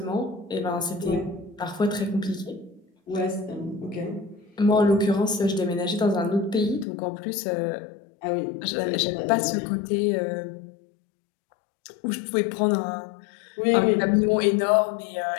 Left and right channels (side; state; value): right; drops out; at 6.9 s